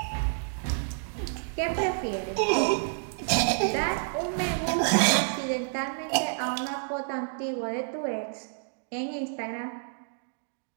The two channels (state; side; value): silent; left; digital silence